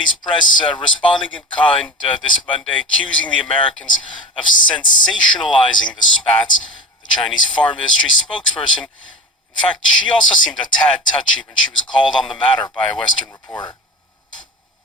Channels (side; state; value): both; normal; correlation 0.31